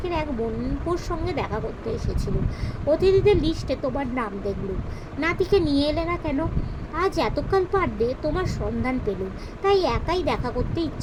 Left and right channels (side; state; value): both; identical; correlation 1.00